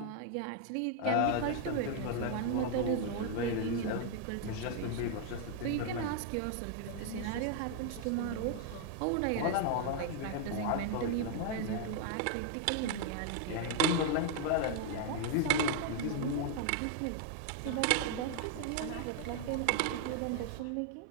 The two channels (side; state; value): both; different; correlation 0.00